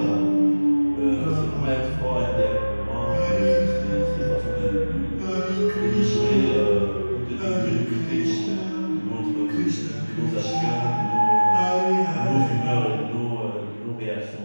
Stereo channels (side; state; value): both; inverted; correlation -1.00